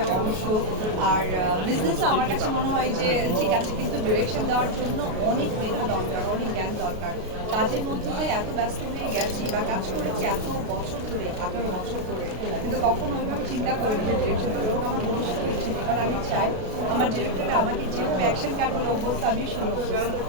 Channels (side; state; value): left; late; 32 ms